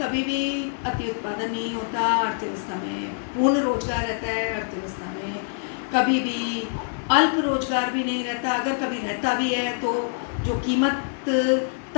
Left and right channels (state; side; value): silent; right; digital silence